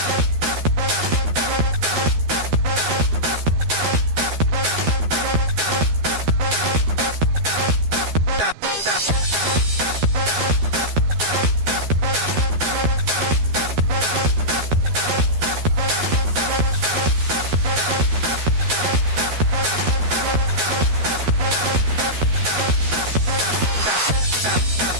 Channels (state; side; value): late; left; 12 ms